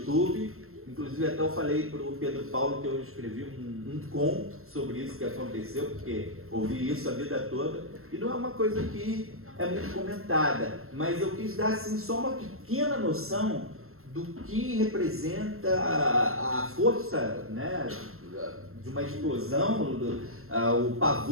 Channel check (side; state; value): left; late; 0.62 ms